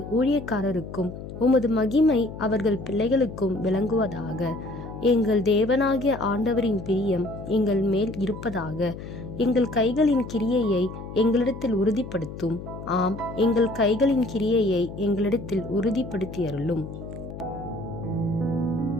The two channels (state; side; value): noise; left; hum, 11 dB below the sound